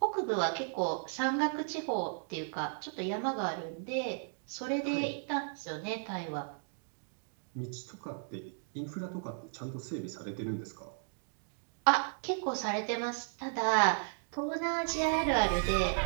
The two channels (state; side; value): silent; left; digital silence